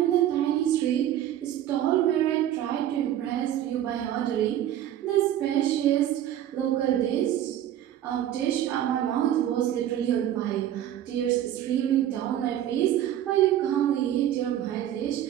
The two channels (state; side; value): quieter; left; 11.6 dB